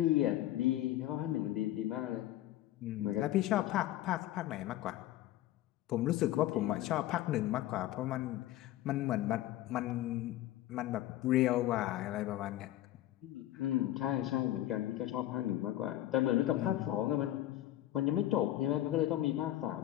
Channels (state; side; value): quieter; right; 14.3 dB